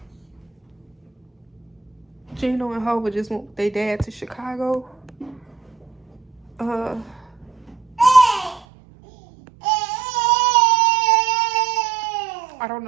Gino and Hova just went with their dad to Chicago. I don't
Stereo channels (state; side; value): drops out; left; at 8.7 s